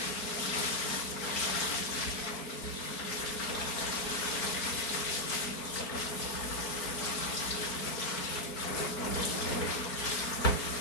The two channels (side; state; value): right; late; 4.5 ms